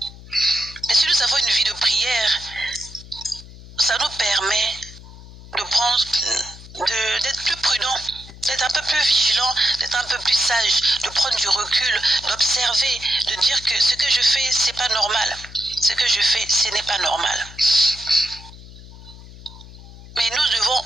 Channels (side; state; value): left; noise; hum, 18 dB below the sound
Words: Et si nous avons une vie de prière, ça nous permet de prendre, d'être plus prudent, d'être un peu plus vigilant, d'être un peu plus sage, de prendre du recul, d'observer, de dire que ce que je fais, c'est pas normal. Ce que je fais, ce n'est pas normal. Mais nous devons